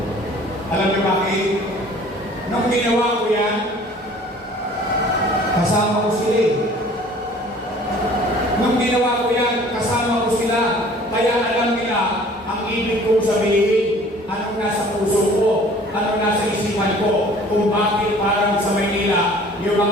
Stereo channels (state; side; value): normal; both; correlation 0.50